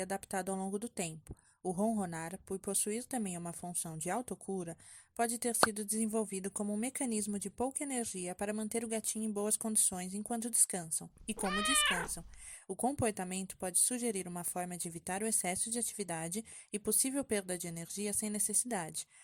ao longo do tempo. O ronronar, por possuir também uma função de autocura, pode ter sido desenvolvido como um mecanismo de pouca energia para manter o gatinho em boas condições enquanto descansam. E como descansam, o comportamento pode sugerir uma forma de evitar o excesso de atividade e possível perda de energia sem necessidade.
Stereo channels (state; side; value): identical; both; correlation 1.00